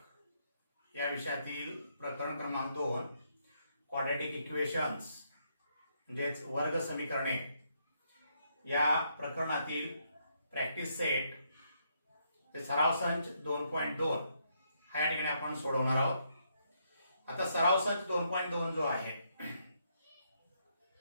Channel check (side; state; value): both; inverted; correlation -0.75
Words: या विषयातील प्रकरण क्रमांक 2 क्वाड्रॅटिक इक्वेशन्स म्हणजेच वर्ग समीकरणे या प्रकरणातील प्रॅक्टिस सेट ते सराव संच 2.2 हा या ठिकाणी आपण सोडवणार आहोत। आता सराव संच 2.2 जो आहे